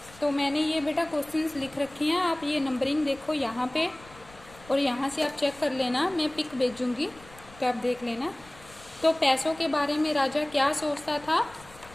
तो मैंने ये बेटा क्वेश्चंस लिख रखी हैं, आप ये नंबरिंग देखो यहाँ पे और यहाँ से आप चेक कर लेना, मैं पिक भेजूंगी तो आप देख लेना। तो पैसों के बारे में राजा क्या सोचता था?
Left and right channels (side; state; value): left; noise; rumble, 23 dB below the sound